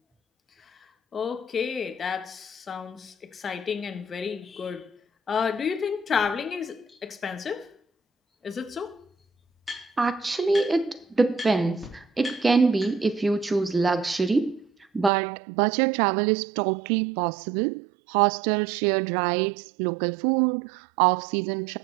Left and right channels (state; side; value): drops out; left; at 15.1 s